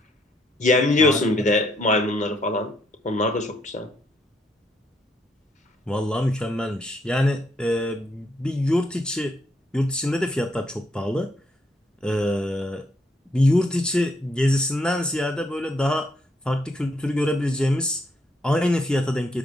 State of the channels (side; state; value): both; normal; correlation 0.73